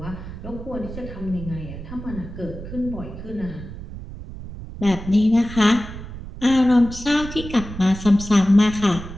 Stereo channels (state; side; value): noise; right; rumble, 11 dB below the sound